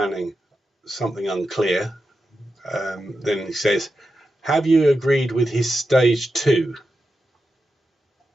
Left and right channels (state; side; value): normal; both; correlation 0.89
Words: Something unclear. Then he says, have you agreed with his stage 2?